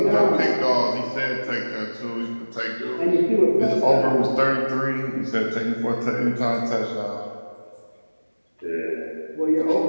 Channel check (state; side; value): inverted; both; correlation -1.00